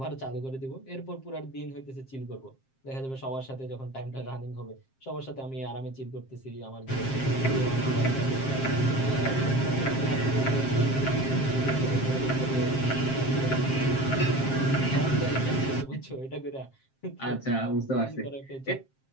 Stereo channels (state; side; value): late; right; 7.6 ms